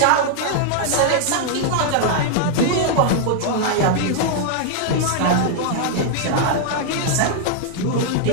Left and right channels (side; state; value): both; different; correlation -0.01